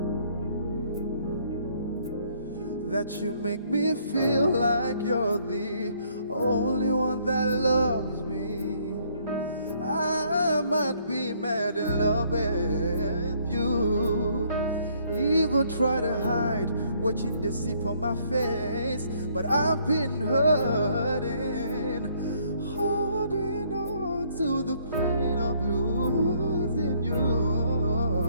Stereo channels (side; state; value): both; inverted; correlation -0.66